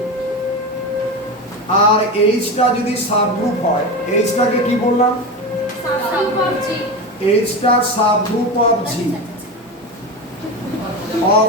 আর এইচটা যদি সাবগ্রুপ হয়, এইচটাকে কি বললাম? এইচটা সাবগ্রুপ অফ জি,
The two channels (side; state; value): both; normal; correlation 0.22